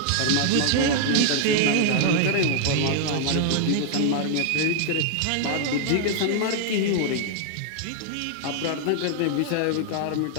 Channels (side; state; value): both; different; correlation -0.01